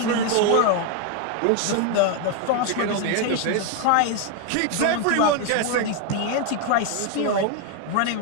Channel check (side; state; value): both; different; correlation 0.01